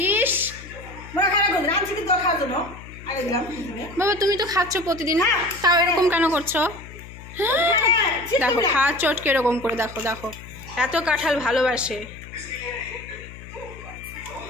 ইস মনে খারাপ করবি, রাঁধছি কি তোর খাওয়ার জন্য আগে দিলাম। বাবা তুমি তো খাচ্ছ প্রতিদিন, তাও এরকম কেন করছো? দেখো খাওয়ার চটকে এরকম করে, দেখো দেখো এত কাঁঠাল ভালোবাসে।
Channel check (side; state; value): left; noise; hum, 16 dB below the sound